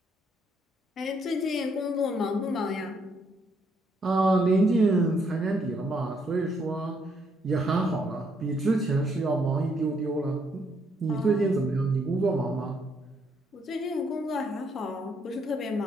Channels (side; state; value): both; normal; correlation 0.72